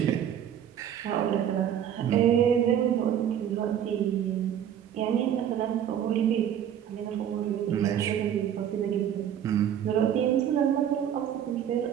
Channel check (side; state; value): left; quieter; 9.7 dB